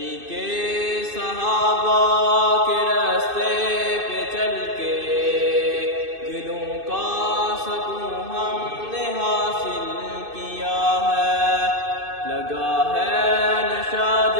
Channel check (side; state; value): left; late; 2.6 ms